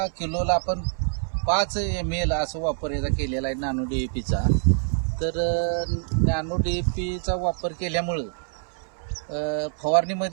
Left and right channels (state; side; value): silent; left; 61 dB below the other